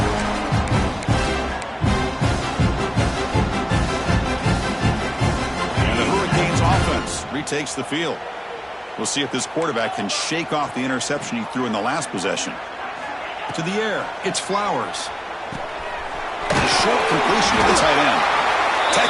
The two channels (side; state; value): both; identical; correlation 1.00